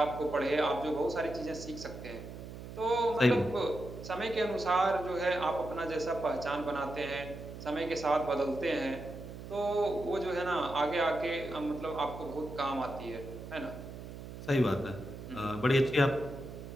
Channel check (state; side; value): noise; right; hum, 11 dB below the sound